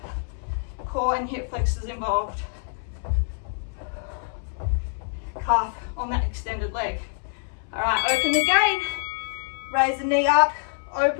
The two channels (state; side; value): silent; right; 61 dB below the other